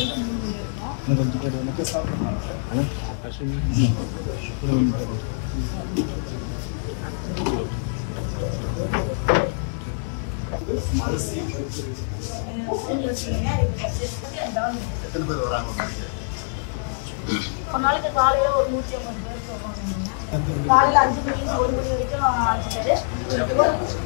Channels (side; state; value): right; silent; 62 dB below the other